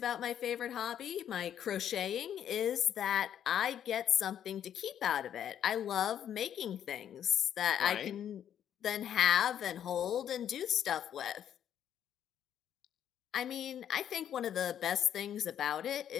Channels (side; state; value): right; quieter; 9.8 dB